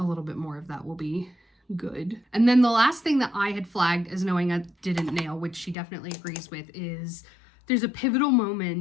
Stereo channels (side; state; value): right; drops out; at 5.8 s